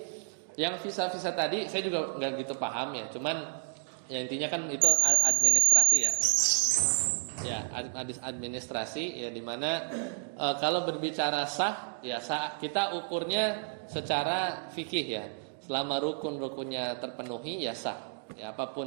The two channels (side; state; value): left; silent; digital silence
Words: yang visa-visa tadi saya juga nggak gitu paham ya, cuman ya intinya kan itu administrasi ya administrasi ya, dimana kalau berbicara sah ya kita ukurnya secara fikih ya, selama rukun-rukunnya terpenuhi ya sah ya,